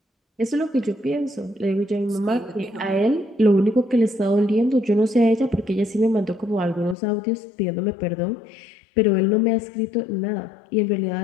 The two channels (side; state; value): right; drops out; at 7.0 s